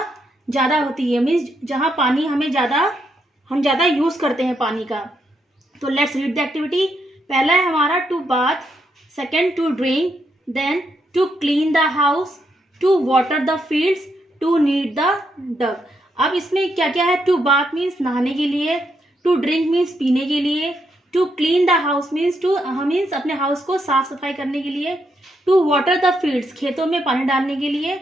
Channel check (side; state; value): both; normal; correlation 0.79